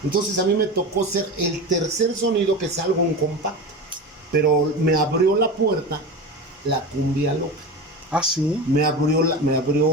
Entonces a mí me tocó ser el tercer sonido que salgo en compacto, pero me abrió la puerta la cumbia loca. Ah, sí. Me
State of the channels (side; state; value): both; normal; correlation 0.26